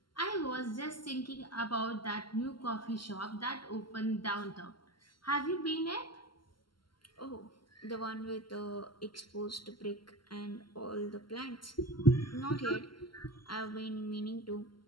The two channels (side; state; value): right; late; 0.72 ms